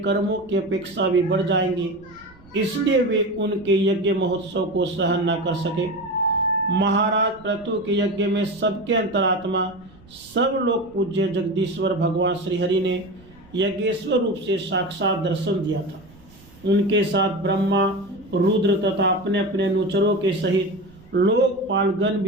की अपेक्षा भी बढ़ जाएंगे, इसलिए वे उनके यज्ञ महोत्सव को सहन न कर सके। महाराज पृथु के यज्ञ में सबके अंतरात्मा सब लोग पूज्य जगदीश्वर भगवान श्रीहरि ने यज्ञेश्वर रूप से साक्षात दर्शन दिया था। उनके साथ ब्रह्मा, रुद्र तथा अपने अपने अनुचरों के सहित लोकपालगण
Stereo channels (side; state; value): right; noise; rumble, 25 dB below the sound